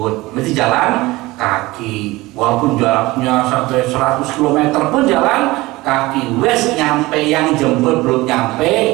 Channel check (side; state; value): left; quieter; 20.1 dB